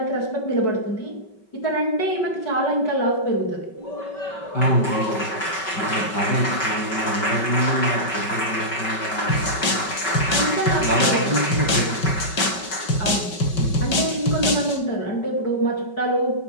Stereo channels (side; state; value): right; late; 5.3 ms